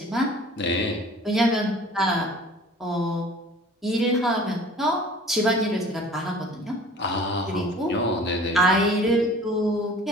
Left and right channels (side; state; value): both; normal; correlation 0.47